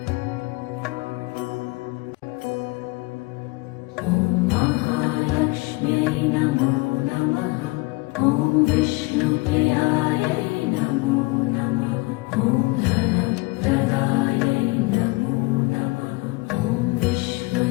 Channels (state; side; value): quieter; right; 24.5 dB